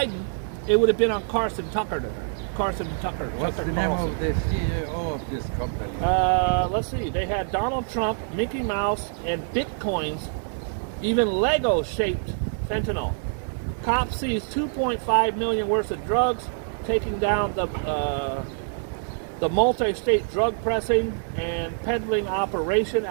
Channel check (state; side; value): silent; left; digital silence